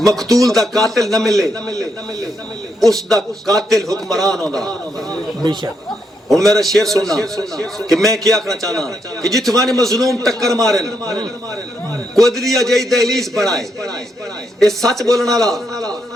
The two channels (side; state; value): both; normal; correlation 0.79